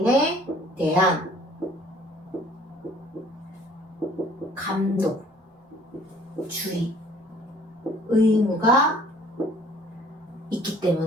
대한 감독, 주의, 의무가 있기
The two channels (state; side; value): normal; both; correlation 0.55